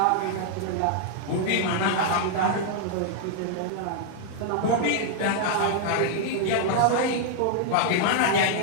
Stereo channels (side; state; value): both; different; correlation -0.01